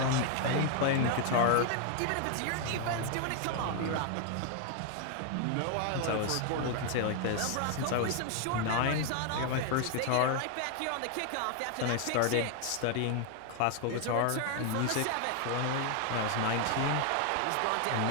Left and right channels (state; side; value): different; both; correlation 0.00